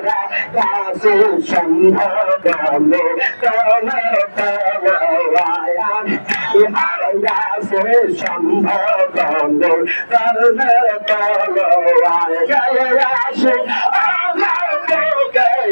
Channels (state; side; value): inverted; both; correlation -1.00